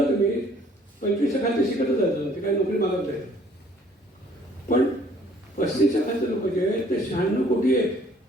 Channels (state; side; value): normal; both; correlation 0.58